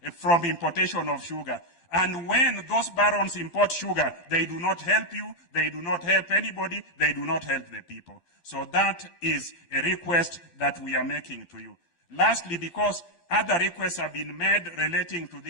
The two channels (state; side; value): late; right; 12 ms